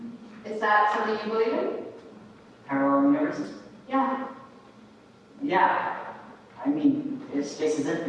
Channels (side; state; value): both; identical; correlation 1.00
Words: Is that something you believe in? Parallel universes? Yeah. Yeah. I mean, if space is